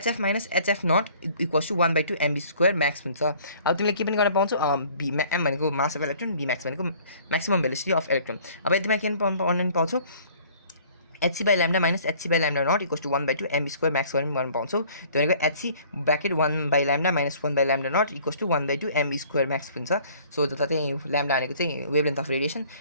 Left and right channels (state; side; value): inverted; both; correlation -0.54